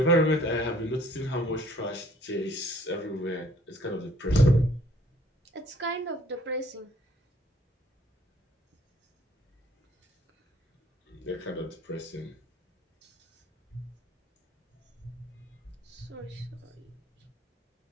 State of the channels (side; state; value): both; normal; correlation 0.58